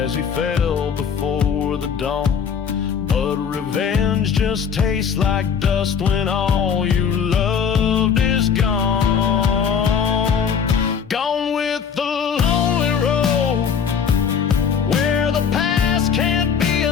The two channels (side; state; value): right; quieter; 7.0 dB